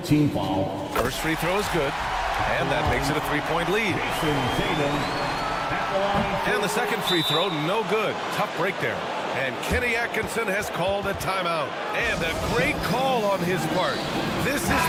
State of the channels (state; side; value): identical; both; correlation 1.00